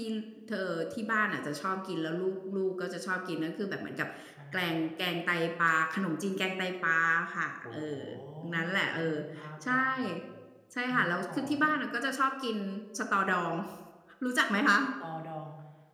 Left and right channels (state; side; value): identical; both; correlation 1.00